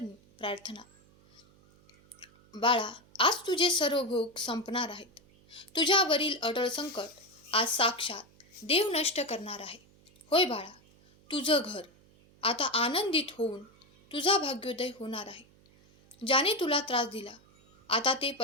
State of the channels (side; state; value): right; noise; hum, 29 dB below the sound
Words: प्रार्थना. बाळा, आज तुझे सर्व भोग संपणार आहेत. तुझ्यावरील अटळ संकट आज साक्षात देव नष्ट करणार आहे. होय बाळा, तुझं घर आता आनंदित होऊन तुझा भाग्योदय होणार आहे. ज्याने तुला त्रास दिला आता ते